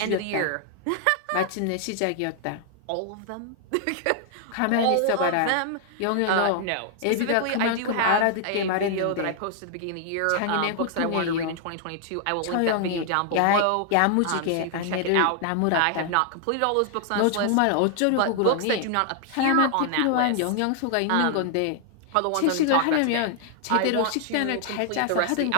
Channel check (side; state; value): both; different; correlation 0.00